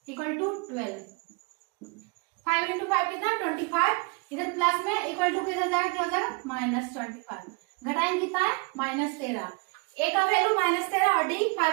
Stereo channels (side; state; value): left; quieter; 30.9 dB